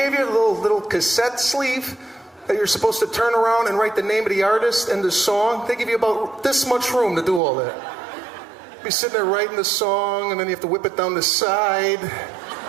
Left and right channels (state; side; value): drops out; left; at 7.4 s